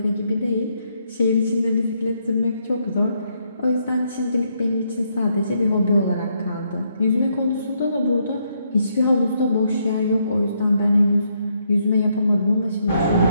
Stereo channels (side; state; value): both; inverted; correlation -0.75